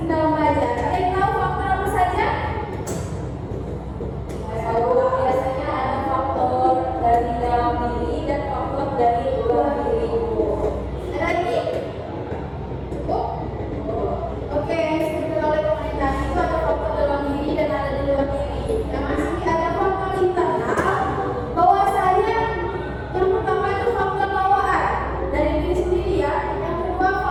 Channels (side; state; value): both; identical; correlation 1.00